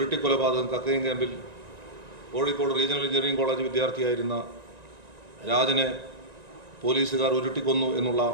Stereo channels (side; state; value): left; late; 1.9 ms